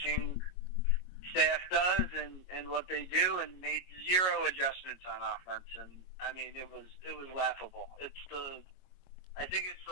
staff does and what they do, and made zero adjustments on offense. And I mean, it was laughable. I think it's the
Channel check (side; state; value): right; late; 22 ms